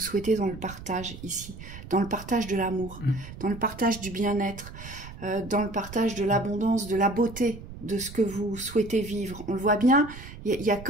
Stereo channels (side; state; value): right; noise; rumble, 14 dB below the sound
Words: souhaitez dans le partage ici, dans le partage de l'amour, dans le partage du bien-être, dans le partage de l'abondance, de la beauté, de ce que vous souhaitez vivre. On le voit bien, il y a